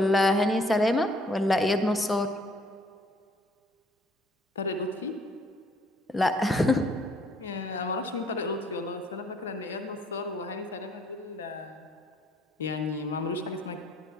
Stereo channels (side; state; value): both; normal; correlation 0.63